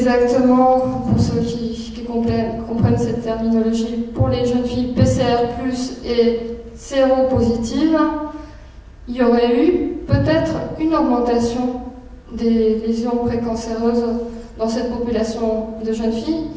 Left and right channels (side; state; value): both; identical; correlation 1.00